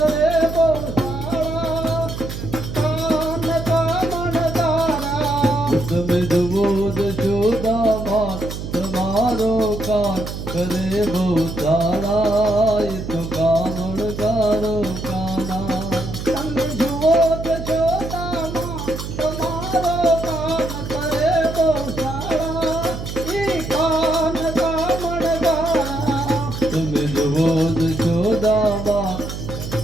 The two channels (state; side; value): noise; right; hum, 7 dB below the sound